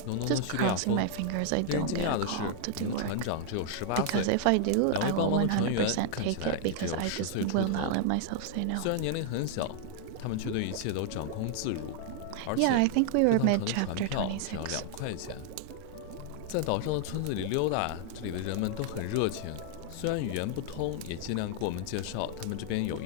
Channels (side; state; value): both; different; correlation 0.00